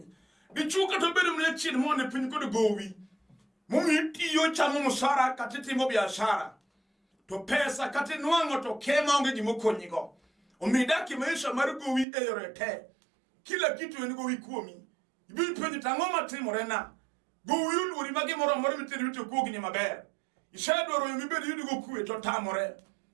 Dichuo kata bedo mne chien mo ane piny kod gowi. Momi tiyo chamo musara kata timo biashara. To pesa kata nwang'o to kema onge gimo konyigo. Omidaki maisha mar gowi e yore te. Kila kitu en gowi kuomi. Ibi penjo tang'o matimore na. Gowi uluori magi moro miteri wito kogni maber. Isedwaro yo mibedi yudo go kwe to tamore.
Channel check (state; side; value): drops out; left; at 12.1 s